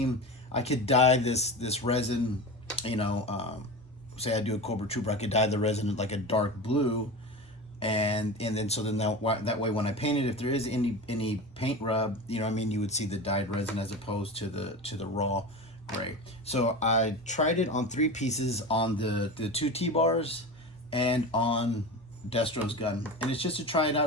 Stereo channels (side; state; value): both; normal; correlation 0.27